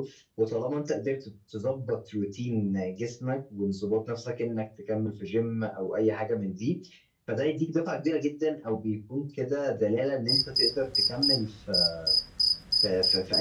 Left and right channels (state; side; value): identical; both; correlation 1.00